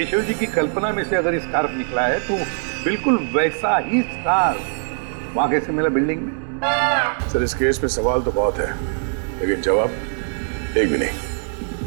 जी की कल्पना में से अगर स्कार्फ निकला है तो बिल्कुल वैसा ही स्कार्फ वहां कैसे मिला बिल्डिंग में? सर इस केस में सवाल तो बहुत है, लेकिन जवाब एक भी नहीं।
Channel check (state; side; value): silent; left; 65 dB below the other